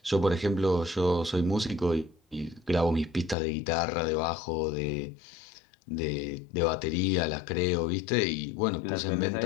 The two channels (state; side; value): drops out; right; at 3.4 s